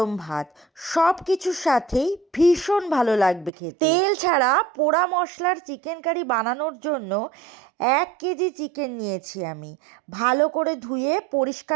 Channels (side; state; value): left; drops out; at 3.5 s